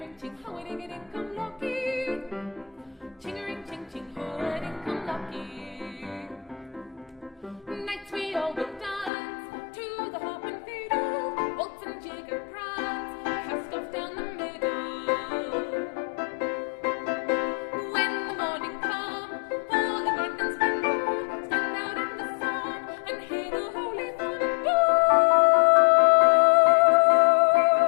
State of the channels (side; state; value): right; drops out; at 9.1 s